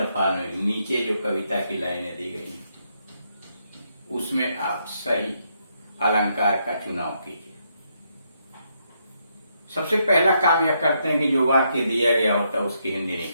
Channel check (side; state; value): both; inverted; correlation -0.77